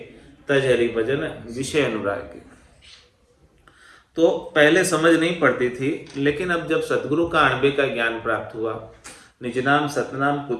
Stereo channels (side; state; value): both; identical; correlation 1.00